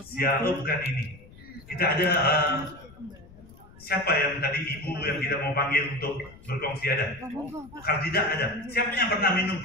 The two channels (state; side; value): noise; left; rumble, 22 dB below the sound